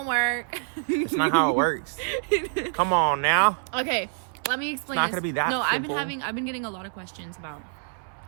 work. It's not how it works. Come on now. Okay, let me explain. It's not gonna be that simple. I've been getting a lot of questions about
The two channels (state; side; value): silent; left; 61 dB below the other